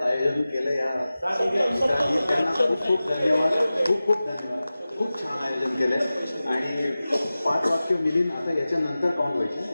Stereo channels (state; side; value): inverted; both; correlation -0.96